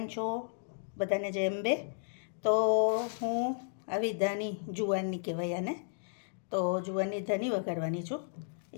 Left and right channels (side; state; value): right; silent; digital silence